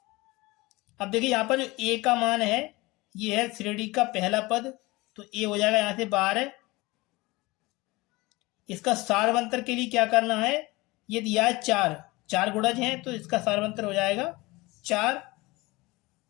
अब देखिए यहाँ पर जो ए का मान है ये है श्रेणी का पहला पद, तो ए हो जाएगा यहाँ से 12। इसका सारवंतर के लिए क्या करना है, ये दिया है 4 गुणज हैं तो इसका सारवंतर हो जाएगा 4।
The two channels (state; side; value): quieter; right; 22.1 dB